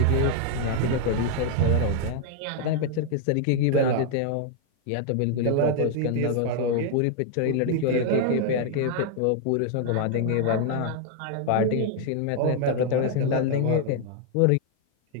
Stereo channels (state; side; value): different; both; correlation 0.00